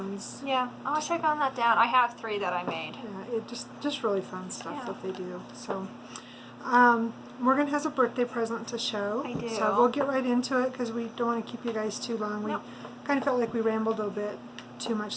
Yeah, I should have gotten that down. I have 3 that I made. Yeah, it just really fun stuff that they do. So, Morgan has a birthday present to show. I do. So we'll get right into it because we don't want to keep you guys too long. We kind of felt like we rambled a bit too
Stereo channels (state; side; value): identical; both; correlation 1.00